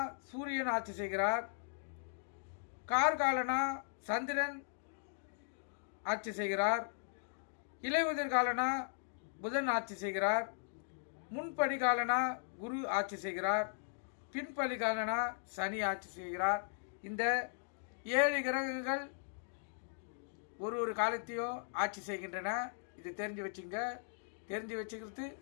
சூரியன் ஆட்சி செய்கிறார். கார்காலனா சந்திரன் ஆட்சி செய்கிறார். இலையுதிர் காலனா புதன் ஆட்சி செய்கிறார். முன்படி காலனா குரு ஆட்சி செய்கிறார். பின்படி காலனா சனி ஆட்சி செய்கிறார். இந்த 7 கிரகங்கள் ஒரு காலத்தையும் ஆட்சி செய்கின்றன. இது தெரிஞ்சு வச்சுங்க. தெரிஞ்சு வச்சுக்கிறது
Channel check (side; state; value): right; silent; digital silence